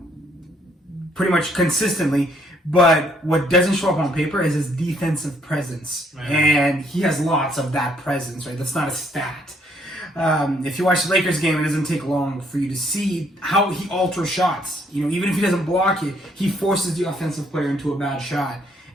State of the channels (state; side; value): normal; both; correlation 0.68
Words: consistently. But what doesn't show up on paper is his defensive presence. Right. And he has lots of that presence, right? That's not a stat. If you watch the Lakers game, it doesn't take long for you to see how he alters shots. Even if he doesn't block it, he forces the offensive player into a bad shot.